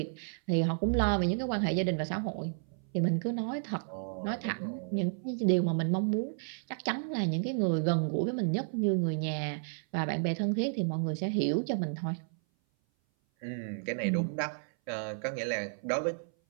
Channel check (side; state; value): left; silent; 56 dB below the other